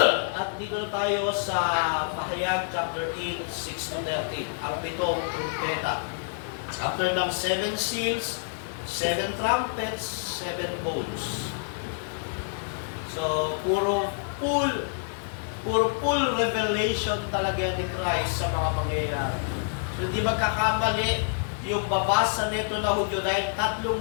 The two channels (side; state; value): right; silent; digital silence